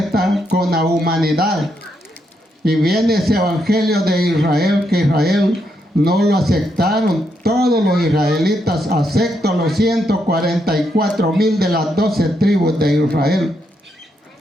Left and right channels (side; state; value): both; normal; correlation 0.79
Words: con la humanidad. Y viene ese evangelio de Israel, que Israel no lo aceptaron. Todos los israelitas, excepto los 144,000 de las 12 tribus de Israel.